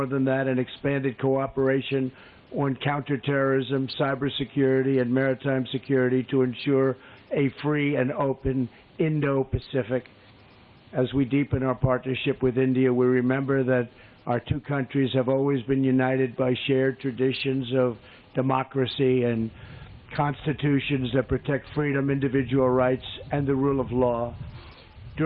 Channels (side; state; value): both; identical; correlation 1.00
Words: than that, an expanded cooperation on counterterrorism, cybersecurity, and maritime security to ensure a free and open Indo-Pacific. As we deepen our partnership with India, we remember that our two countries have always been united by shared traditions of democracy and constitutions that protect freedom, individual rights, and the rule of law.